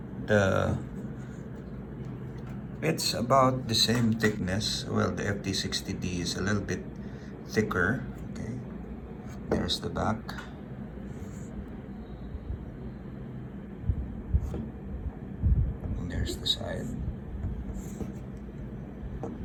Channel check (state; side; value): identical; both; correlation 1.00